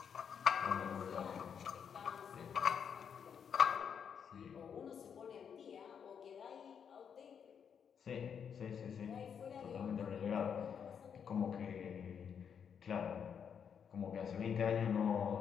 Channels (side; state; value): right; quieter; 7.4 dB